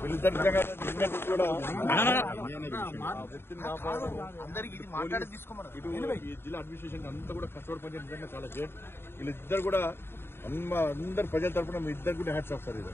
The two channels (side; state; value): right; late; 0.11 ms